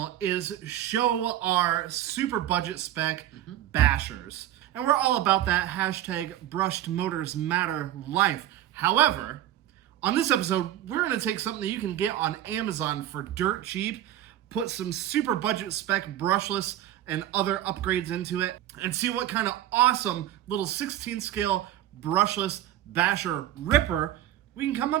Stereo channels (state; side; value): quieter; left; 12.5 dB